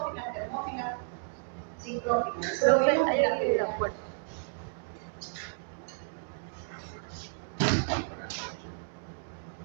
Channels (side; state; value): left; silent; digital silence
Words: termófilas, sincrófilas. Eso lo vimos en la primera. Buenas